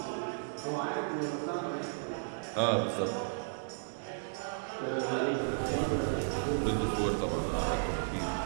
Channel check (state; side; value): silent; left; 55 dB below the other